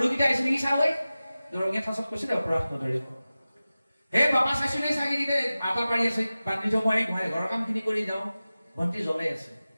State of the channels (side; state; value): both; inverted; correlation -0.96